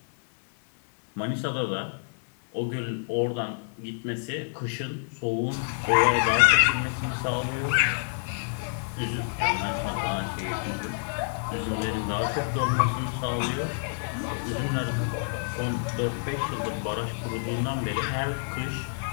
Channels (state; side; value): silent; right; 57 dB below the other